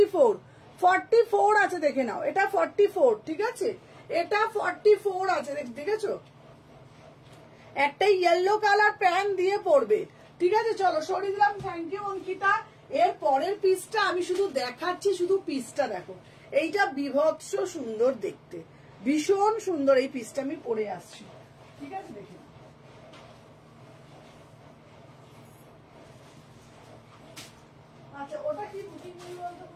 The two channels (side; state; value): both; identical; correlation 1.00